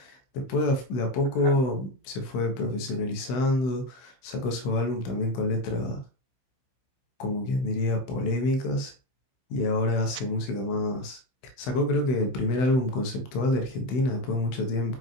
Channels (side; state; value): right; late; 16 ms